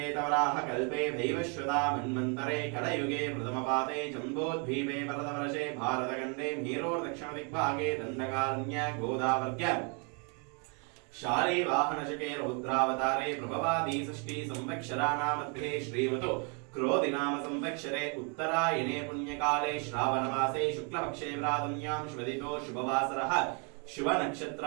कल्पे भैवश्वता मन्वन्तरे कलयुगे प्रथमपाते जम्बोद्वीपे भरतवर्षे भारतखण्डे मेरोर्दक्षिणदिग्भागे दण्डकारण्य गोदावर्ग्य शाले वाहनशके रौद्रावतारे प्रभवादी षष्ठी संवत्सराणामध्ये श्रीमतो क्रोधिनाम संवत्सरे उत्तरायणे पुण्यकाले श्रावणमासे शुक्लपक्षे प्रातम्यां शुभदितो शुभवासरः शुभ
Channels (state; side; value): quieter; left; 36.4 dB